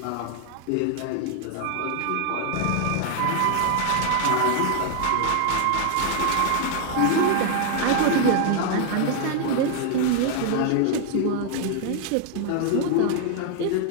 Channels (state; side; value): different; both; correlation 0.00